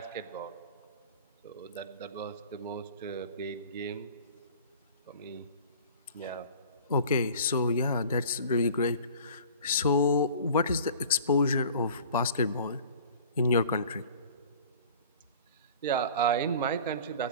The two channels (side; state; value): both; inverted; correlation -0.44